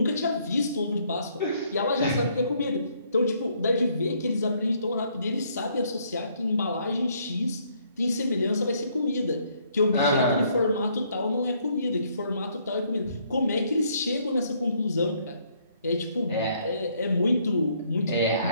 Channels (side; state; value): both; inverted; correlation -0.68